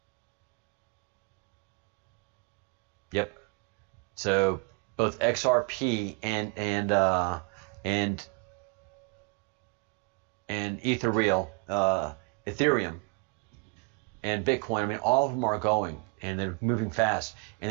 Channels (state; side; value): quieter; left; 32.0 dB